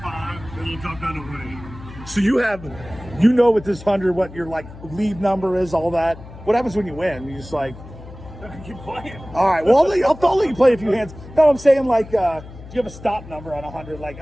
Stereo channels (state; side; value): noise; left; hum, 16 dB below the sound